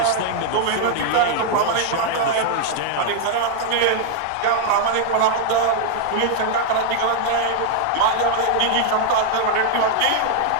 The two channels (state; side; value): different; both; correlation 0.00